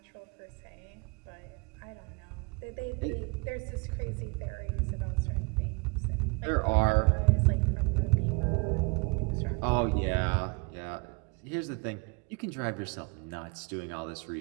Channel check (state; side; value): quieter; left; 30.6 dB